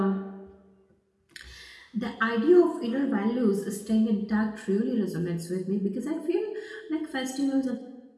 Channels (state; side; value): identical; both; correlation 1.00